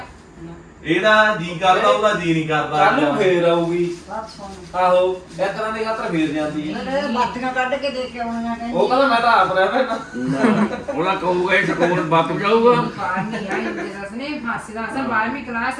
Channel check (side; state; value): both; identical; correlation 1.00